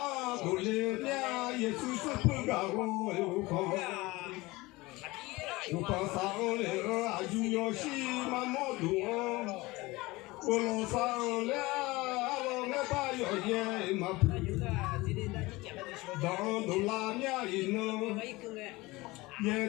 do le nya ye tu tu pu ga go u ko sa le a ju yo shi ma mo du o lo sa le a lo ne ba yo ye ma pu dans de la nya ino ye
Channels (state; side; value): quieter; right; 21.5 dB